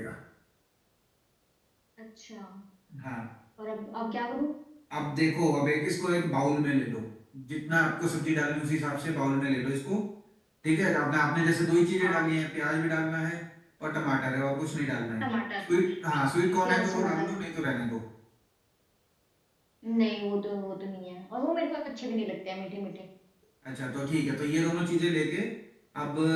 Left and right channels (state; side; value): identical; both; correlation 1.00